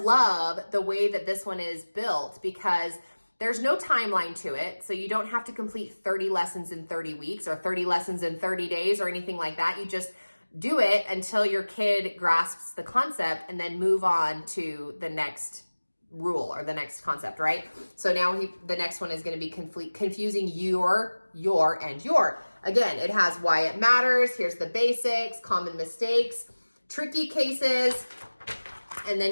the way that this one is built, because there's no timeline to it, so you don't have to complete 30 lessons in 30 weeks or 30 lessons in 30 days or anything like that. You just do it until your kid grasps the concept, and then move on to the next rule or the next concept, right? So now the next one is going to be confusing your, and your. Again, it has why it matters. Here's the basics, common mistakes, tricky cases, and then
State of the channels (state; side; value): inverted; both; correlation -1.00